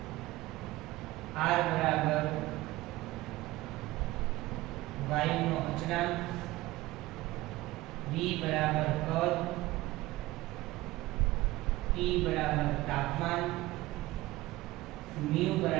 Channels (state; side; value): quieter; left; 18.4 dB